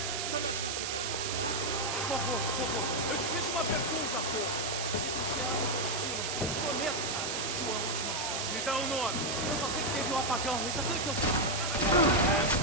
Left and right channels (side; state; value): right; noise; hiss, 2 dB below the sound